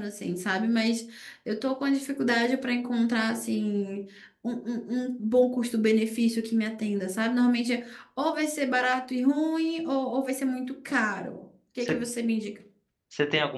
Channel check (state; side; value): identical; both; correlation 1.00